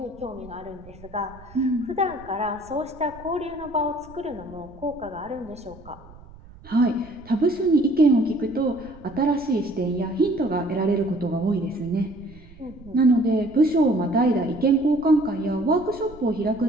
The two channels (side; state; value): right; noise; rumble, 21 dB below the sound